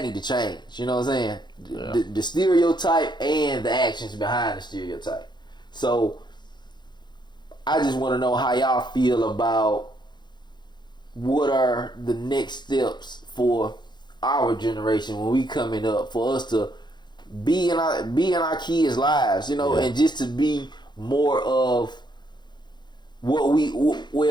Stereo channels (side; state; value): right; late; 0.21 ms